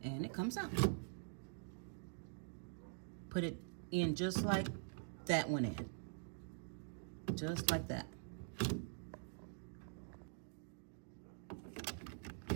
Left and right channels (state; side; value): silent; left; digital silence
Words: and it comes out. Put it in just like that went in. Just like that.